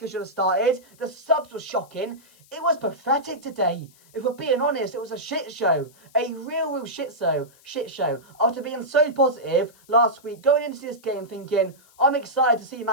should have started. The subs were shocking. It was pathetic today. If we're being honest, it was a shit show. A real shit show. After being so positive last week, going into this game thinking, I'm excited to see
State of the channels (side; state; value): left; noise; hiss, 28 dB below the sound